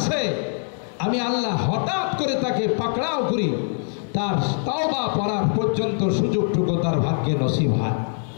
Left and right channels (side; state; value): right; silent; 63 dB below the other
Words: আমি আল্লাহ হঠাৎ করে তাকে পাকড়াও করি, তার তাওবা পড়ার পর্যন্ত সুযোগটুকু তার ভাগ্যে নসিব হয়।